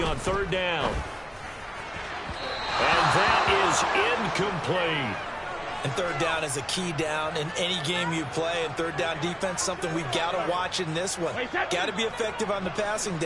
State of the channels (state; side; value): identical; both; correlation 1.00